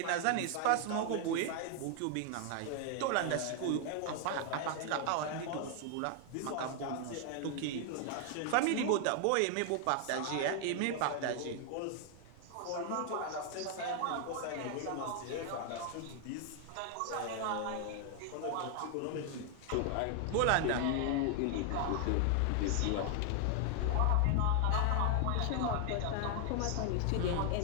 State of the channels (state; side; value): different; both; correlation 0.00